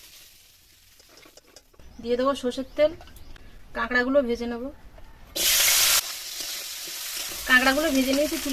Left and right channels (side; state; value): both; identical; correlation 1.00